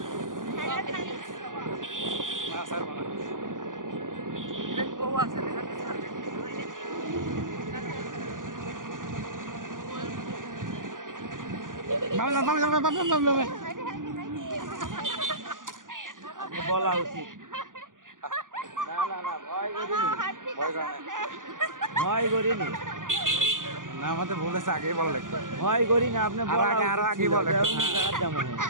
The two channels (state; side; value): late; left; 0.89 ms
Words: বলা উচিত না না না ভয় করিনি না আমাদের বলেছে আগেই বলা লাগতো ভয় করি না আপনি আরো আগে বলে